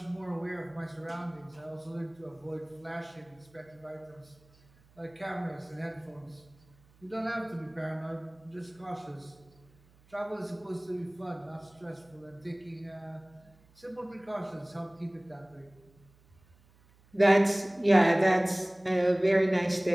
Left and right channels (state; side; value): noise; right; hum, 29 dB below the sound